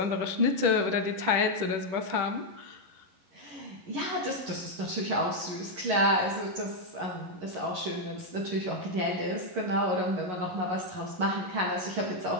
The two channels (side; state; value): left; late; 11 ms